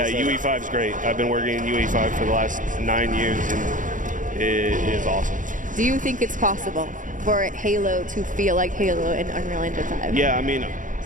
UE5 is great. I've been working in UE5 for the last 9 years, and it is awesome. Do you think it's possible for Halo to feel like Halo in Unreal Engine 5? Yeah, I mean,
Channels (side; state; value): left; late; 0.38 ms